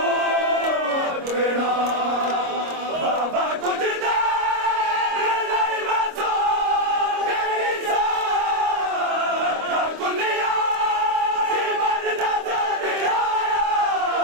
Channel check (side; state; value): left; late; 25 ms